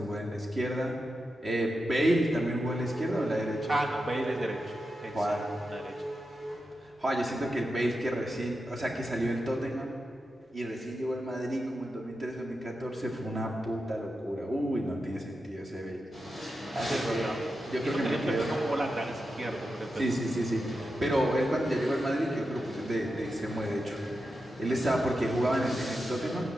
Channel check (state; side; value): normal; both; correlation 0.89